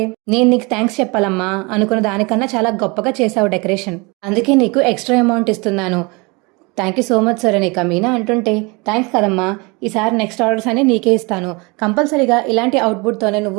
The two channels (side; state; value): left; quieter; 27.9 dB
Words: నేను నీకు థ్యాంక్స్ చెప్పాలమ్మా, అనుకున్న దానికన్నా చాలా గొప్పగా చేశావు డెకరేషన్, అందుకే నీకు ఎక్స్ట్రా అమౌంట్ ఇస్తున్నాను. Thank you so much sir అని ఇక మీనా అంటుంటే, థ్యాంక్స్ కదమ్మా, ఈసారి నెక్స్ట్ ఆర్డర్స్ అన్ని నీకే ఇస్తాను, కంపల్సరీగా ఇలాంటి అవుట్పుట్తోనే